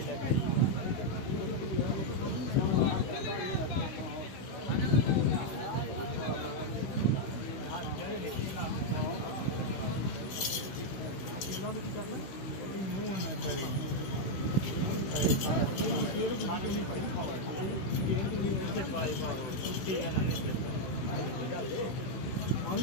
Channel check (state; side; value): late; right; 16 ms